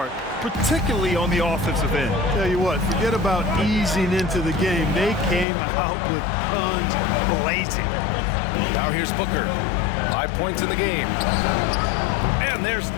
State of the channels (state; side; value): drops out; right; at 5.5 s